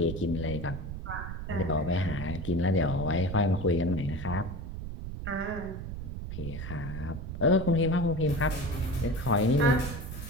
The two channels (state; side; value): noise; right; rumble, 7 dB below the sound